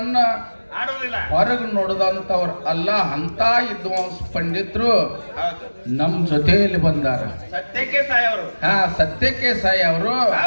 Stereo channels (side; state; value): both; inverted; correlation -1.00